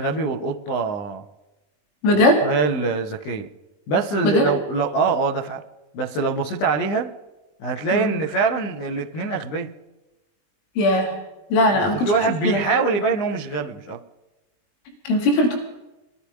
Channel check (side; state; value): right; late; 20 ms